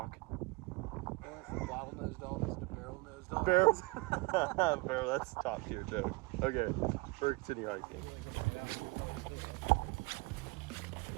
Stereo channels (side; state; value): left; quieter; 24.5 dB